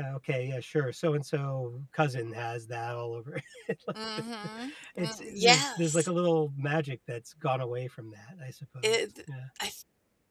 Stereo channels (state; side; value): identical; both; correlation 1.00